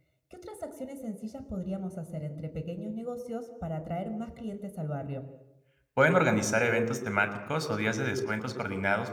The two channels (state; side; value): identical; both; correlation 1.00